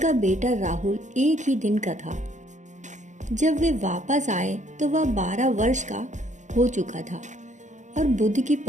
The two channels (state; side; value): late; left; 0.35 ms